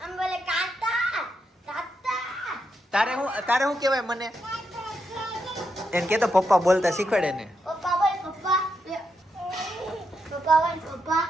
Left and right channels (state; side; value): normal; both; correlation 0.83